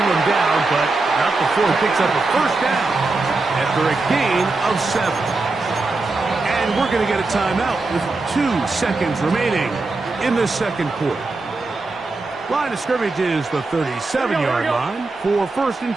him down, but not before he picks up a 1st down after a gain of 7. And we're going to get a timeout with 2 seconds remaining in the 2nd quarter. Line of scrimmage is the 37-yard line for 1st and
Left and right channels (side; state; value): left; quieter; 3.5 dB